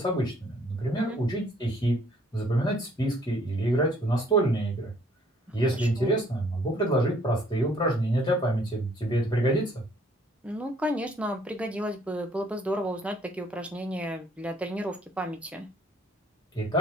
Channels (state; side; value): normal; both; correlation 0.62